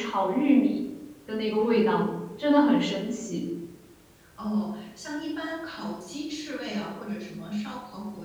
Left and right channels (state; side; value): identical; both; correlation 1.00